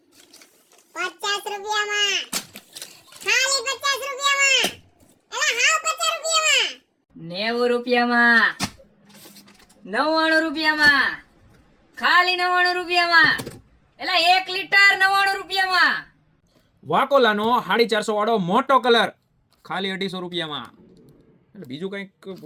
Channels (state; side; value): identical; both; correlation 1.00